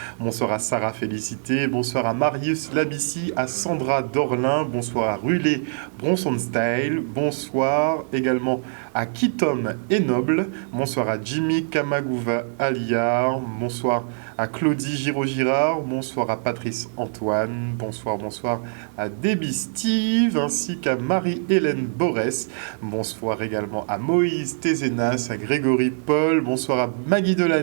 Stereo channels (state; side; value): silent; left; digital silence